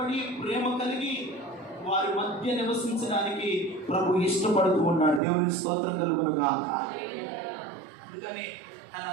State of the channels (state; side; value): drops out; left; at 5.2 s